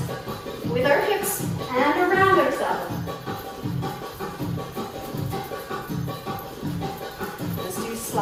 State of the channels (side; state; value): both; identical; correlation 1.00